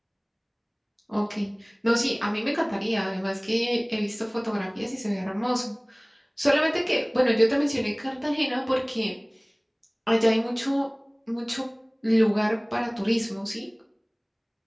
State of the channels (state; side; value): identical; both; correlation 1.00